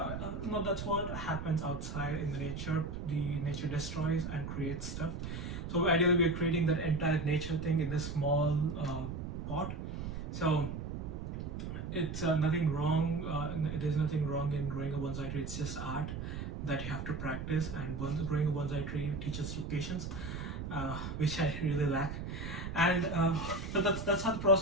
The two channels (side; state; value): right; noise; rumble, 6 dB below the sound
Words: no, that's what happens outside in the nature. The nature destroys and creates stuff. So ideally, we're creating that entire nature thing in this small pot. So it's nothing wrong. There's nothing wrong in growing a bonsai tree. It's just art that you have to practice, and growing a bonsai tree teaches you patience, which I really lack. And so that's how the